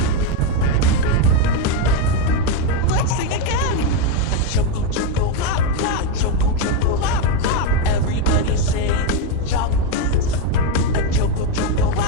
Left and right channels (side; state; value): both; different; correlation 0.03